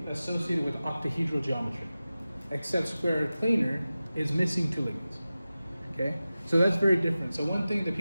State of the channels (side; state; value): both; inverted; correlation -0.95